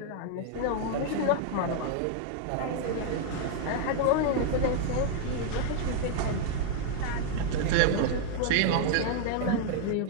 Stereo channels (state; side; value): different; both; correlation 0.00